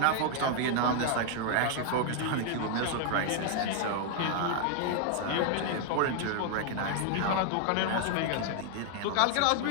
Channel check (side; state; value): both; different; correlation 0.00